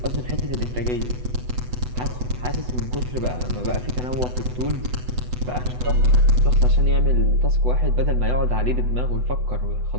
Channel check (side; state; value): left; late; 8.1 ms